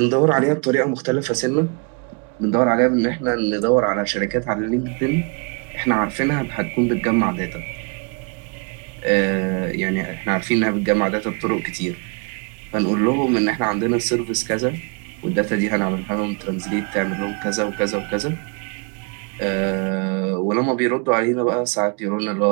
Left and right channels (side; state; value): left; quieter; 35.2 dB